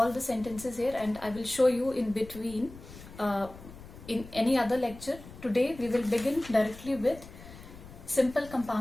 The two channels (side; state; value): left; noise; rumble, 17 dB below the sound